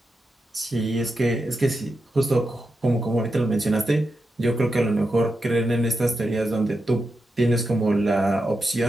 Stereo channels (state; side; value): normal; both; correlation 0.88